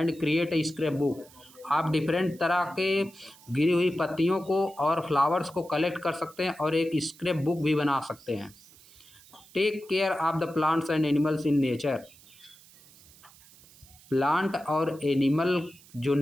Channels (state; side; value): noise; right; hiss, 24 dB below the sound